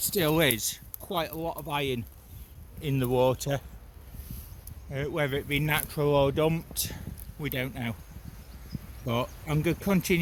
is, quite a lot of iron in the water. Whether it be natural or dumped, we don't know. But I'm going to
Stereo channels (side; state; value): both; identical; correlation 1.00